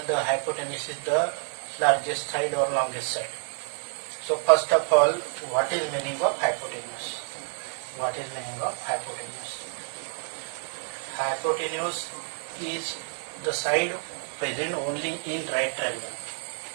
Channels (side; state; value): left; silent; 59 dB below the other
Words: the hypotenuse is the largest side or longest side. So first of all, what is meaning of hypotenuse? What is meaning of hypotenuse? Hypotenuse is the side present only in right triangle.